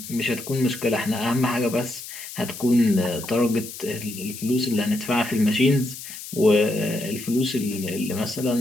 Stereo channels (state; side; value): noise; left; hiss, 12 dB below the sound